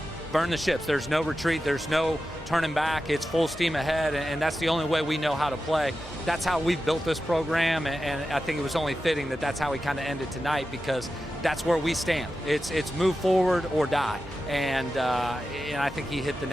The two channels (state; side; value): normal; both; correlation 0.92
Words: burn the ships. There's no retreat. There's no turning back. It's full steam ahead, and that's the only way we know how to play. That's how we've built this program, and I think it was only fitting that that's how we kind of ended tonight, because that's where we stand. It's move forward or die, and I think he hit the